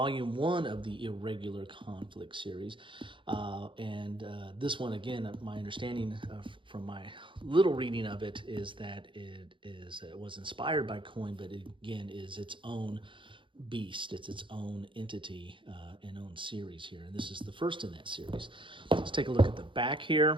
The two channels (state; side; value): late; left; 0.24 ms